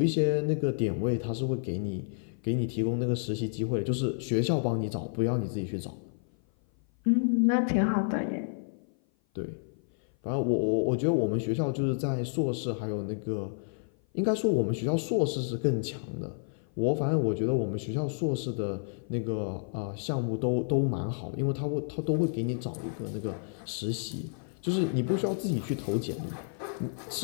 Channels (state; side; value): silent; right; 55 dB below the other